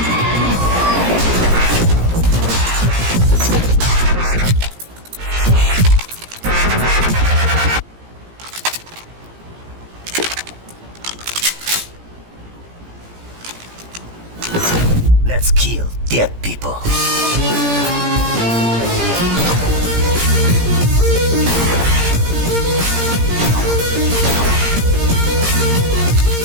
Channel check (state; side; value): late; left; 17 ms